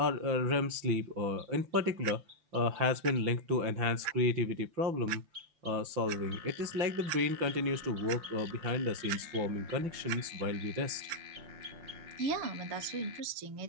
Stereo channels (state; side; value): late; left; 5.9 ms